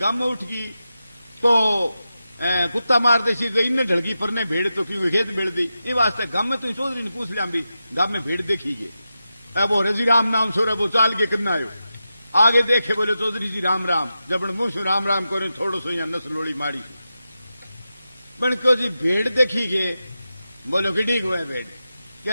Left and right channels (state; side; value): inverted; both; correlation -0.91